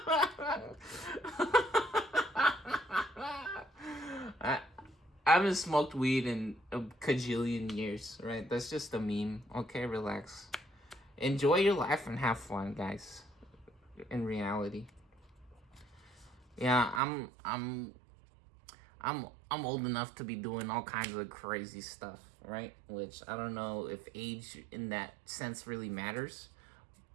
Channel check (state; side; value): drops out; left; at 17.0 s